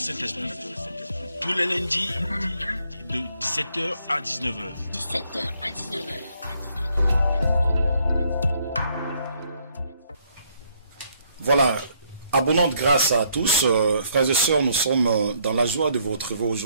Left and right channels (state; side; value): inverted; both; correlation -0.69